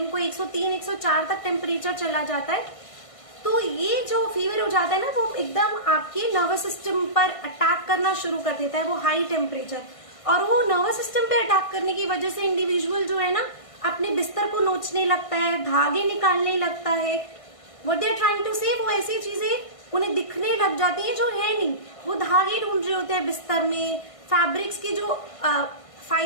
103 104 तक टेम्परेचर चला जाता है, तो ये जो फीवर हो जाता है ना, वो एकदम आपके नर्वस सिस्टम पर अटैक करना शुरू कर देता है, वो हाई टेम्परेचर। और वो नर्वस सिस्टम पे अटैक करने की वजह से इंडिविजुअल जो है ना, अपने बिस्तर को नोचने लगता है, धागे निकालने लगता है। What they are trying to say, वो ऐसी चीजें उन्हें दिखने लग जाती हैं जो है नहीं, वो धागे ढूंढ रहे होते हैं बिस्तर में, फैब्रिक्स की जो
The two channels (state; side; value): late; right; 1.5 ms